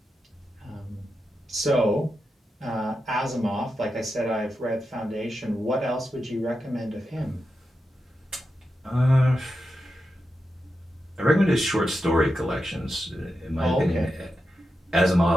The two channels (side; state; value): both; normal; correlation 0.89